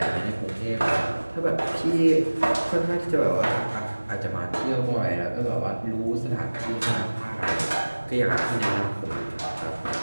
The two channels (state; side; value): inverted; both; correlation -1.00